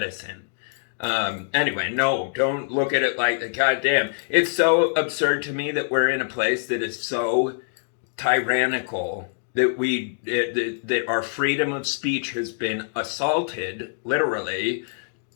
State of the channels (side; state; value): right; silent; digital silence